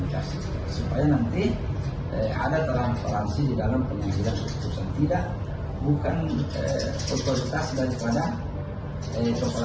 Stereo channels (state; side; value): identical; both; correlation 1.00